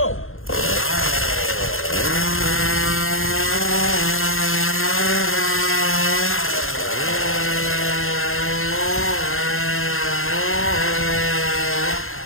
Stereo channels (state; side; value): late; right; 0.61 ms